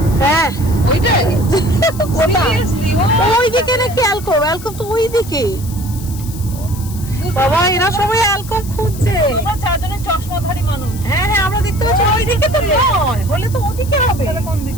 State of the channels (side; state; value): left; noise; hiss, 15 dB below the sound